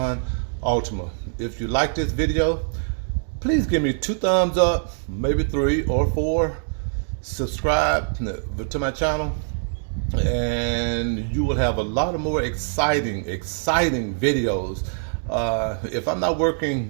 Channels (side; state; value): left; silent; digital silence